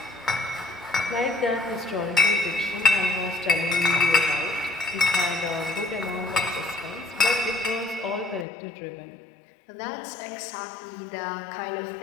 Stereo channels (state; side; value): drops out; right; at 8.5 s